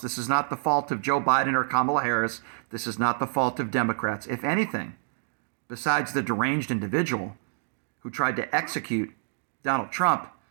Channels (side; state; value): left; silent; digital silence